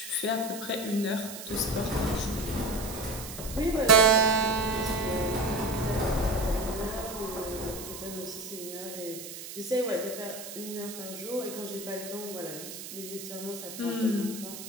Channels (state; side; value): noise; right; hiss, 11 dB below the sound